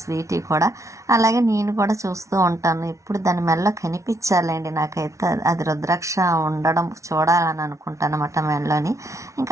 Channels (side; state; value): left; late; 0.14 ms